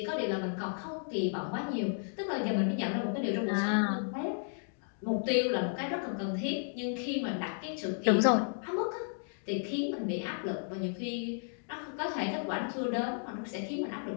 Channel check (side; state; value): right; silent; 55 dB below the other